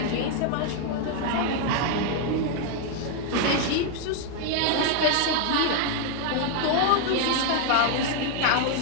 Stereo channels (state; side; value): different; both; correlation 0.00